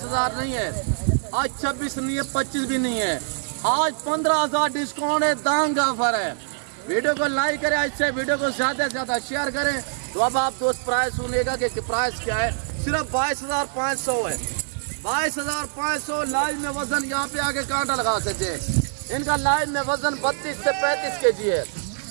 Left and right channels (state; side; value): silent; left; digital silence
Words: नहीं है, आज 26 नहीं है, 25 भी नहीं है। आज 15,000 डिस्काउंट है, दांग ऑफर है। वीडियो को लाइक करें, इससे वीडियो को ज्यादा से ज्यादा शेयर करें। तो अब आप दोस्त प्राइस सुनेगा कि प्राइस क्या है। सिर्फ 22,500 है, 22,500। लाइव में वजन यहाँ पे आके कांटा लगा सकते हैं। इनका लाइव में वजन 32 से 35 kg है,